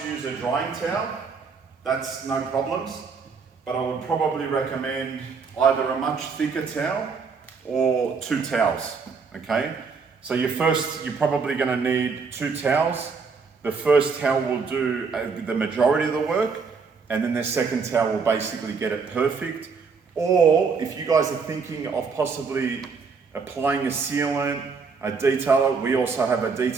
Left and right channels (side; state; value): left; quieter; 5.2 dB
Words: use a drying towel, that's no problems, but I would probably recommend either a much thicker towel or 2 towels, okay? So you're probably gonna need 2 towels. The first towel will do the majority of the work, and then the second towel will basically get it perfect. Or if you guys are thinking of possibly applying a sealant, a detailer, we also have a